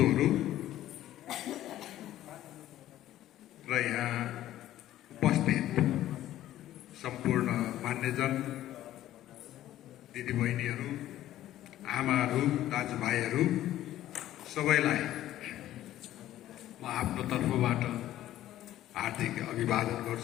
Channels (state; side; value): quieter; right; 13.5 dB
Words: र यहाँ उपस्थित सम्पूर्ण मान्यजन दिदीबहिनीहरू, आमाहरू, दाजुभाइहरू सबैलाई म आफ्नो तर्फबाट हार्दिक अभिवादन